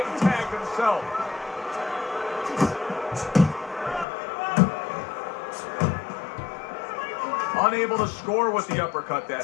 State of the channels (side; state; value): right; drops out; at 4.0 s